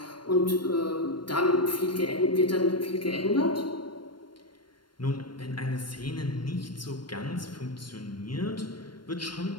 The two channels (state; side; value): late; right; 0.72 ms